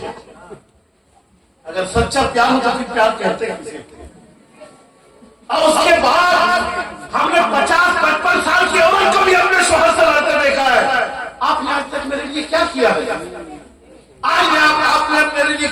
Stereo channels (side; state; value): both; identical; correlation 1.00